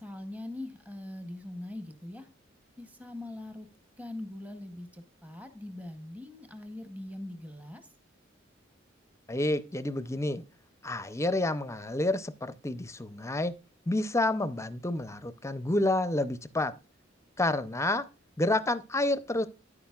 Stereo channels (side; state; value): both; normal; correlation 0.68